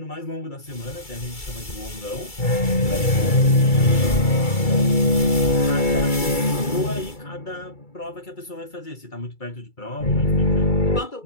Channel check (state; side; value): late; right; 2.3 ms